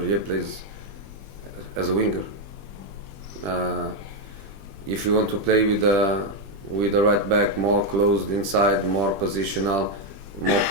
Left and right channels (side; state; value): left; late; 20 ms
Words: plays as a winger. If you want to play with the right back more closed inside, more positional, more